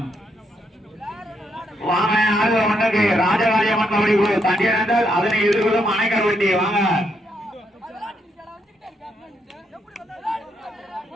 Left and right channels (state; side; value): normal; both; correlation 0.77